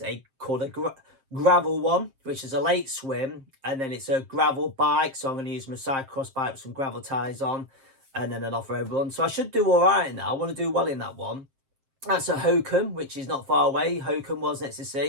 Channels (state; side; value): late; left; 7.6 ms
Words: called a gravel one, which is a late swim, and then it's a gravel bike. So I'm going to use my cyclocross bike with some gravel tyres on, and then an off-road run. So I should do all right in that. I want to do well in that one. That's a Hokum, which is not far away. Hokum was next to